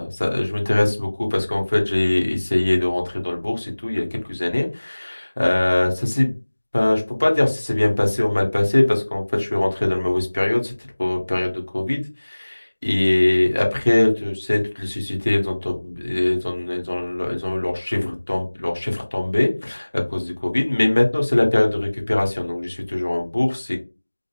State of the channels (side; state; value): both; inverted; correlation -1.00